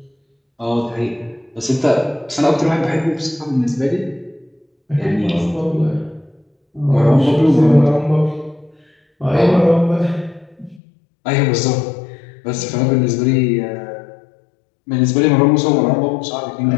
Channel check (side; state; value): right; drops out; at 10.8 s